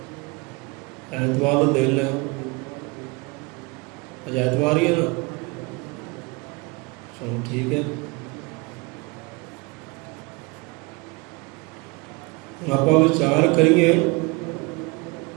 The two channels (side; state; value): left; quieter; 26.6 dB